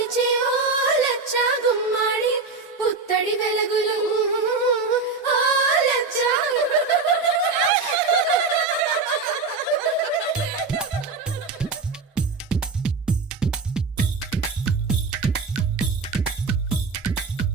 ఓ లచ్చ గుమ్మాడి, పుత్తడి వెలుగులు ఓ లచ్చ.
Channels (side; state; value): left; quieter; 4.3 dB